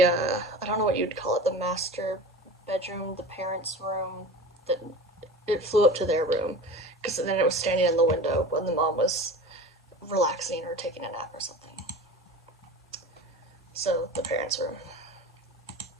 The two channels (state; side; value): normal; both; correlation 0.35